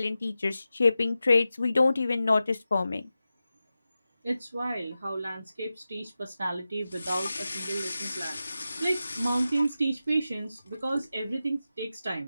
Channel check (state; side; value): inverted; both; correlation -0.93